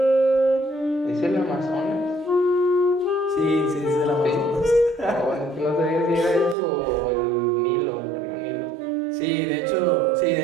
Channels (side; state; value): left; drops out; at 6.6 s